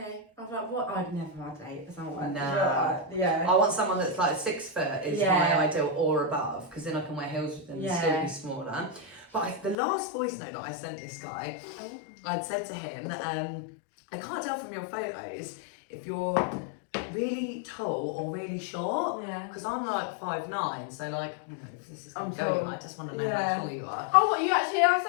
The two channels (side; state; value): right; drops out; at 9.8 s